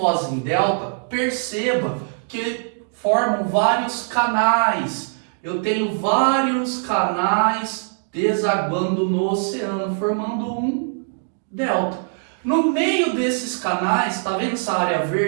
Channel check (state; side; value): silent; left; digital silence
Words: em delta, perceba que formam vários canais. Eu tenho vários canais desaguando no oceano, formando um delta. No meio desses canais, tá vendo essa área